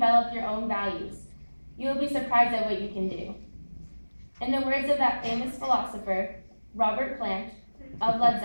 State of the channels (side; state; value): both; inverted; correlation -1.00